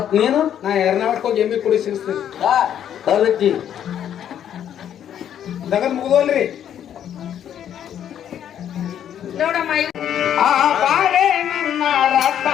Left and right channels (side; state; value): right; quieter; 9.9 dB